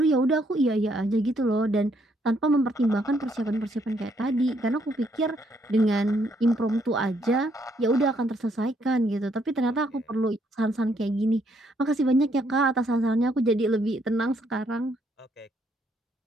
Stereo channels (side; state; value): both; normal; correlation 0.71